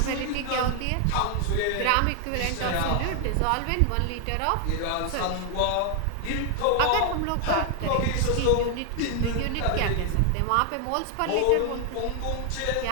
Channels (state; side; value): different; both; correlation 0.00